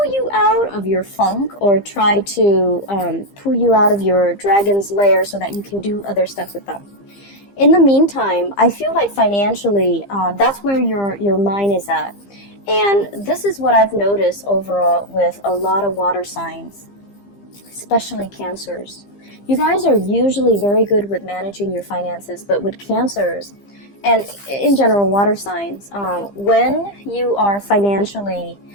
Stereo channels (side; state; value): right; late; 15 ms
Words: you out of your funk, or try to pull you out of your dragon's lair so that you can do other stuff with them. In the meantime, I feel like financially, that's where your mind is at. And this is what I've noticed overall with a lot of water signs, especially Cancers. You guys are usually very good with managing your finances, but with Cancers, and in general water signs, when you are financially